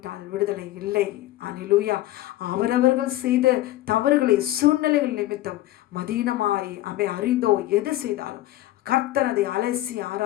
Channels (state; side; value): quieter; right; 15.6 dB